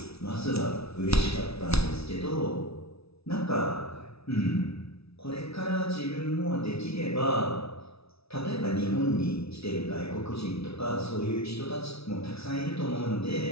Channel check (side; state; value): right; late; 0.77 ms